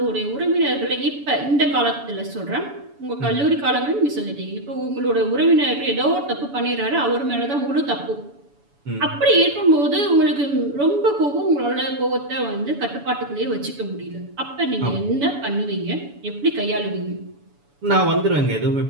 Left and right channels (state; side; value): late; left; 7.0 ms